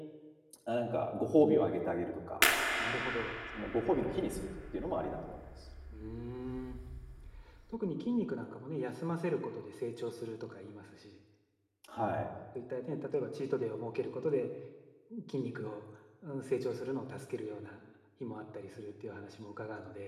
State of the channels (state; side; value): identical; both; correlation 1.00